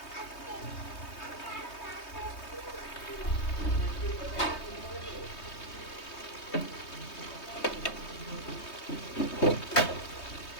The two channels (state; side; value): late; right; 3.2 ms